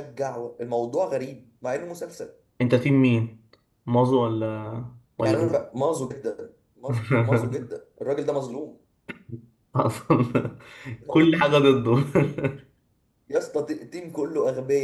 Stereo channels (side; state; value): both; identical; correlation 1.00